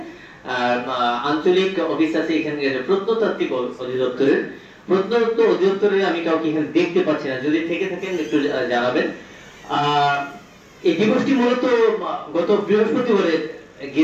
আঞ্চলিক অফিস আছে এখানে প্রত্নতাত্ত্বিক অধিদপ্তরের। প্রত্নতত্ত্ব অধিদপ্তরে আমি কাউকে এখানে দেখতে পাচ্ছি না, যদি থেকে থাকেন একটু জানাবেন। এই দিবসটি মূলত গত বৃহস্পতিবারে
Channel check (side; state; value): both; identical; correlation 1.00